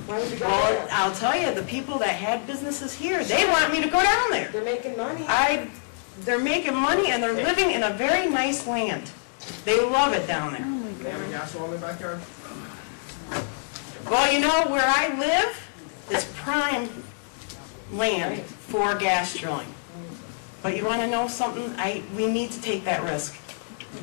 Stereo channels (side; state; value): right; silent; digital silence